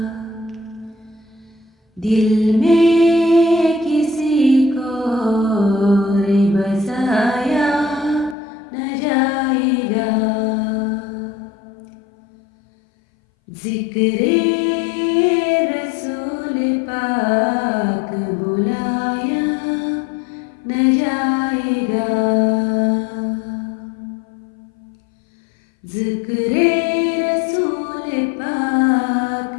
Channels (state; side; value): drops out; right; at 8.3 s